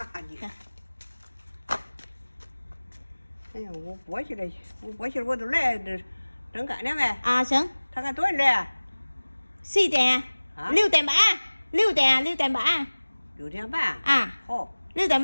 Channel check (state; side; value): inverted; both; correlation -1.00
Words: 哎呀，我过去了，我都来这正干了没？ À sướng. 他看多少来？ Xì tè. Hả? Lưu tèm bả. Lưu tèm bả. 6点半。 À. 好， Lưu tèm